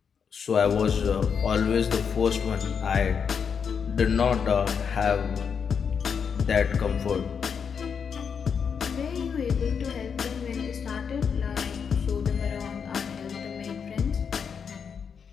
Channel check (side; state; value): right; quieter; 6.6 dB